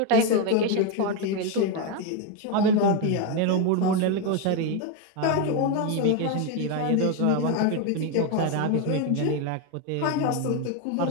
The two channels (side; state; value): both; different; correlation 0.02